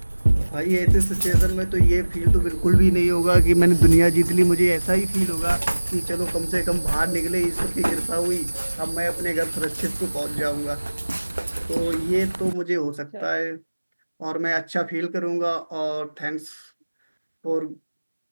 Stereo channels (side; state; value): both; inverted; correlation -1.00